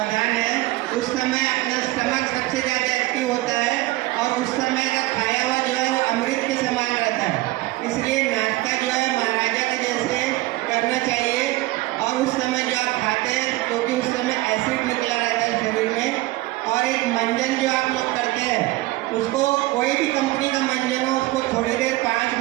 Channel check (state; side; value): quieter; left; 19.1 dB